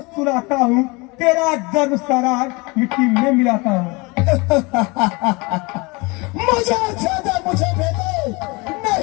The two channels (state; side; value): quieter; right; 26.5 dB